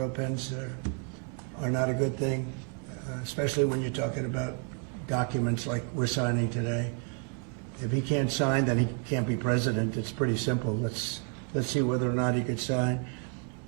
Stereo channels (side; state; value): left; quieter; 38.5 dB